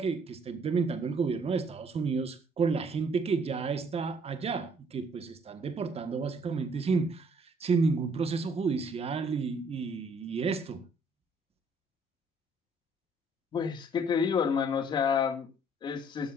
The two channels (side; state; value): both; normal; correlation 0.62